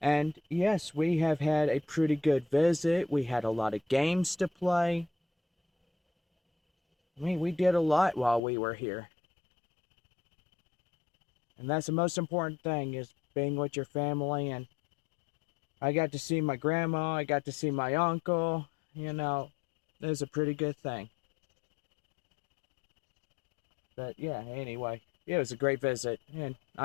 And yes, we have had a pretty good visit. We had a lot of games to play. I mean, we did a lot while we were here. And that's the most important thing, is being with your family. And I got to see my grandma. I got to see my uncle. You know, it was a pretty good thing. But yeah, anyway, it was a great visit, and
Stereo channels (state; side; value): drops out; right; at 8.4 s